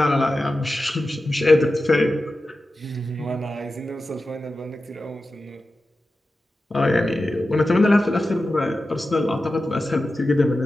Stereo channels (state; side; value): normal; both; correlation 0.93